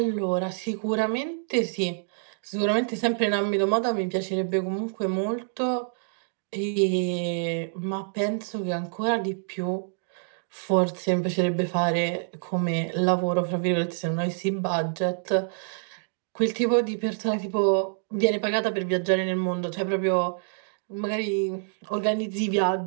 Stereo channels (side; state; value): left; silent; digital silence